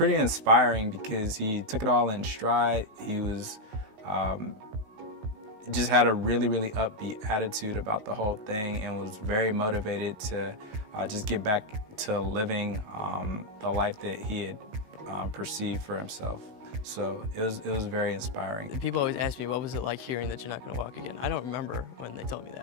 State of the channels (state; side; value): late; left; 16 ms